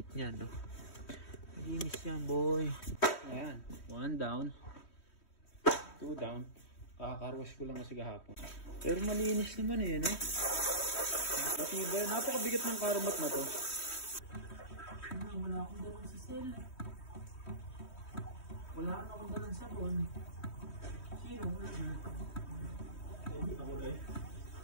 niya, no? Linis yan, boy. Ayan. 1 down. 2 down. Kakakarwas ko lang kasi kahapon. Pero malinis naman eh, no? Napakabigat ng karamat na to. Wala akong dalang sa cell. Wala akong dalang sabon. Sino? Hindi ako eh.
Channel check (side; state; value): right; late; 3.1 ms